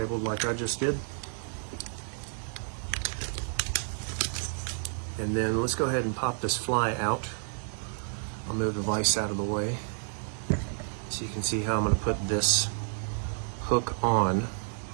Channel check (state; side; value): silent; left; digital silence